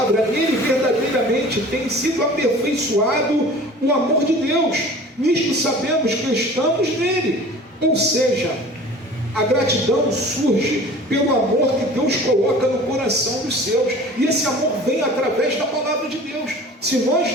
ele verdadeiramente tem sido aperfeiçoado o amor de Deus. Nisto sabemos que estamos nele. Ou seja, a gratidão surge pelo amor que Deus coloca no coração dos seus. E esse amor vem através da palavra de Deus. Se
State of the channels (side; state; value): both; normal; correlation 0.43